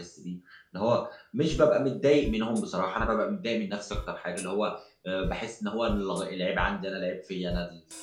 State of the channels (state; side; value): identical; both; correlation 1.00